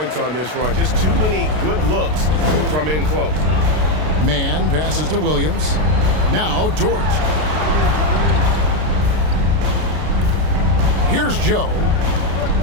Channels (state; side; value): late; left; 33 ms